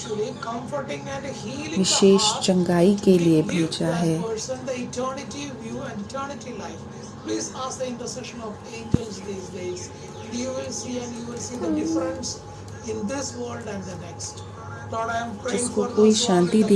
चंगाई के लिए भेजा है। जिसको कोई शांति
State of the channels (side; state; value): both; identical; correlation 1.00